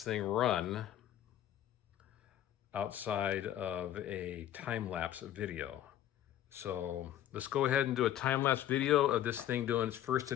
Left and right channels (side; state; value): right; quieter; 12.0 dB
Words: thing run outside of a time-lapse video. So let's go ahead and do a time-lapse video of this thing doing its first